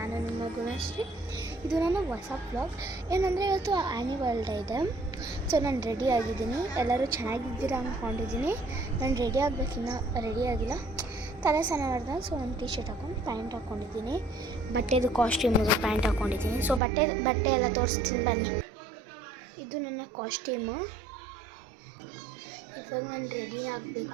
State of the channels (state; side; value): drops out; left; at 16.8 s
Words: ನಿಮ್ಮ ಗುಣಶ್ರೀ. ಇದು ನನ್ನ ಹೊಸ ವ್ಲಾಗ್. ಏನಂದರೆ ಇವತ್ತು ಆ್ಯನಿವಲ್ ಡೇ ಇದೆ. ಸೊ ನಾನು ರೆಡಿ ಆಗಿದ್ದೀನಿ. ಎಲ್ಲರೂ ಚೆನ್ನಾಗಿದ್ದೀರಾ ಅಂದ್ಕೊಂಡಿದ್ದೀನಿ. ನಾನು ರೆಡಿ ಆಗಬೇಕಿನ್ನ ರೆಡಿ ಆಗಿಲ್ಲ. ತಲೆ ಸ್ನಾನ ಮಾಡಿದೆ. ಸೊ ನಾನು ಟೀ ಶರ್ಟ್ ಹಾಕೊಂಡು ಪ್ಯಾಂಟ್ ಹಾಕ್ಕೊಂಡಿದ್ದೀನಿ. ಬಟ್ಟೆದು ಕಾಸ್ಟ್ಯೂಮಿಗೆ ಪ್ಯಾಂಟ್ ಹಾಕ್ಕೊಂಡಿದ್ದೀನಿ. ಸೊ ಬಟ್ಟೆ ಎಲ್ಲ ತೋರಿಸ್ತೀನಿ ಬನ್ನಿ. ಇದು ನನ್ನ ಕಾಸ್ಟ್ಯೂಮು. ಇವಾಗ ನಾನು ರೆಡಿ